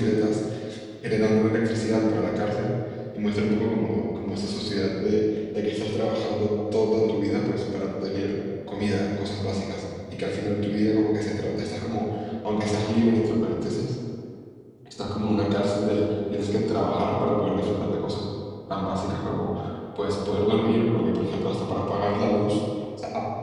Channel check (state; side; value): identical; both; correlation 1.00